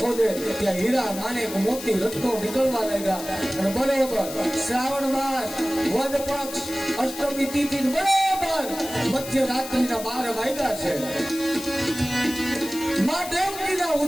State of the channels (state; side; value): noise; left; hiss, 11 dB below the sound